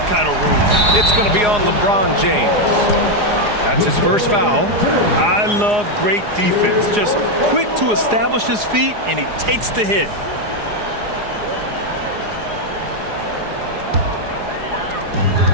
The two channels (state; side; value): late; left; 4.8 ms